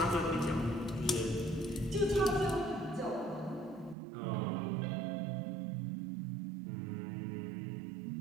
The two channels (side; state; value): left; drops out; at 4.0 s